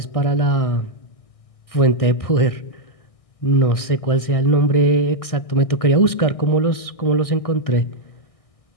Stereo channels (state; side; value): late; right; 1.6 ms